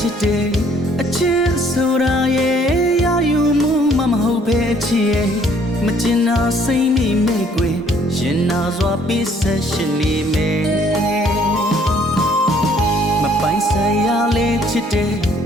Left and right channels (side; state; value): both; normal; correlation 0.61